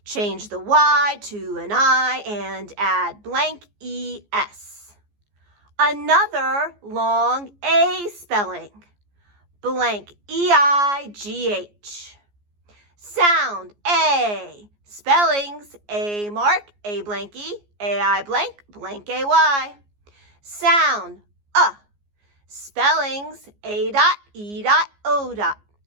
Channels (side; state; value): left; late; 14 ms